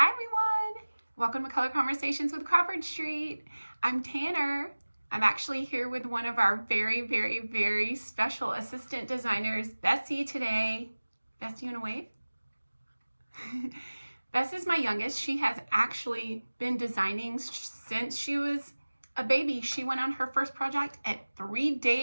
everyone! Welcome to Color Conversations with Crawford Street. I'm Tanner. I'm actually here with one of our very special assistant designers, Bessie, today. Bessie, you wanna wave? Bess is my youngest. She has actually been designing since she was a baby. She went on her first project at 3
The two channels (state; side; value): inverted; both; correlation -1.00